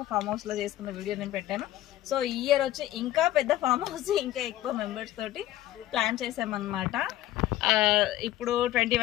ఫామ్ హౌస్లో చేసుకున్న వీడియో నేను పెట్టాను. సో ఈ ఇయర్ వచ్చి ఇంకా పెద్ద ఫామ్ హౌస్, ఇంకా ఎక్కువ మెంబర్స్ తోటి ప్లాన్ చేసామన్నమాట. ఇప్పుడు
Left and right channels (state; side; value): quieter; right; 14.2 dB